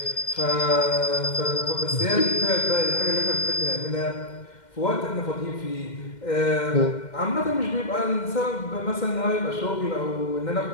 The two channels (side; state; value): right; late; 2.1 ms